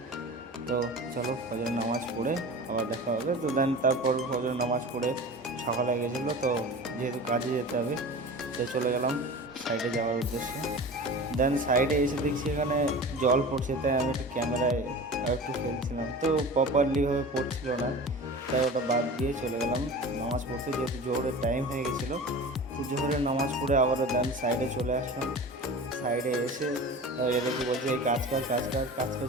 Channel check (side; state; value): both; normal; correlation 0.35